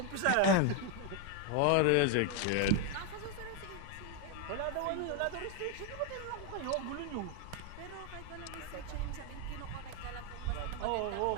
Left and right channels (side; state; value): both; different; correlation 0.01